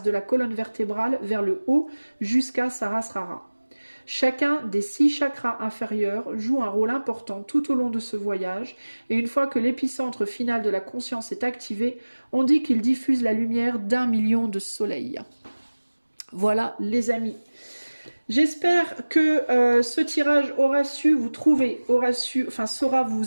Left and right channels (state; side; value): inverted; both; correlation -1.00